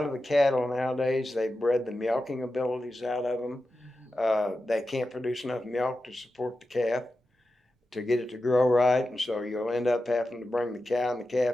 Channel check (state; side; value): normal; both; correlation 0.91